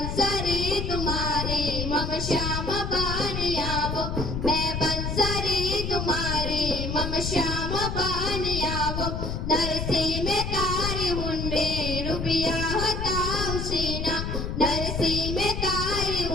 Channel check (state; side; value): noise; left; rumble, 3 dB below the sound